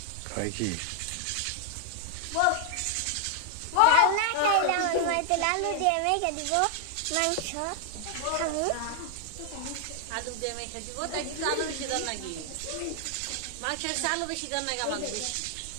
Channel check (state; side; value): different; both; correlation 0.00